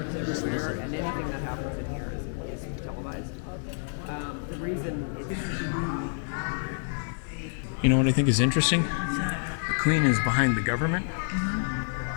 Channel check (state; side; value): silent; right; 59 dB below the other